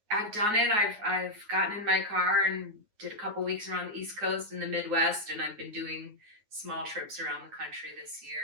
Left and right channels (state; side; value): late; left; 9.5 ms